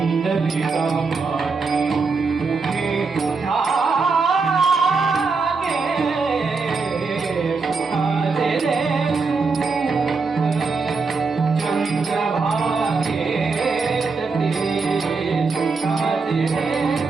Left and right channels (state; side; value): quieter; left; 4.5 dB